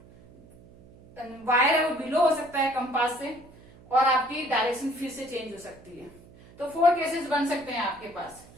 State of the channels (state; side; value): noise; right; hum, 23 dB below the sound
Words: वायर है वो बिलो हो सकता है कंपास से, और आपकी डायरेक्शन फिर से चेंज हो सकती है। तो 4 केसेस बन सकते हैं आपके पास।